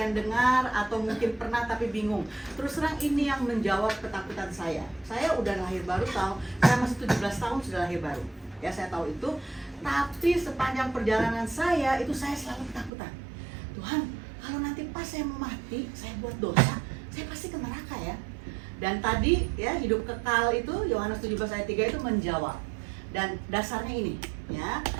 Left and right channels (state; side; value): drops out; left; at 12.9 s